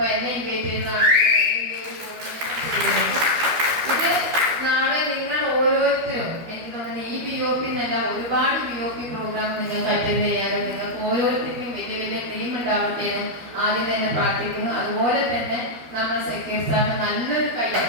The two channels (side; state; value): left; late; 12 ms